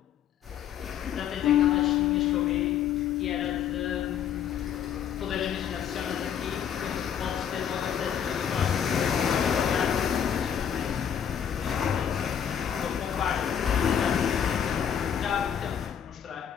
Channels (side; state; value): right; quieter; 8.8 dB